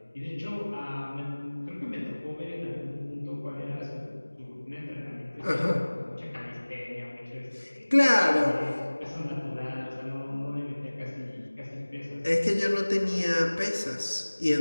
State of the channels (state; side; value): inverted; both; correlation -1.00